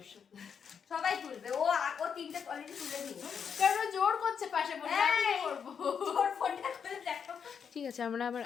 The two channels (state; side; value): quieter; right; 7.0 dB